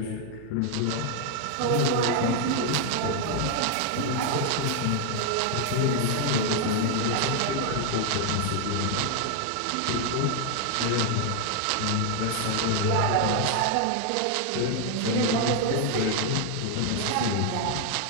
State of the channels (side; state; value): both; different; correlation 0.00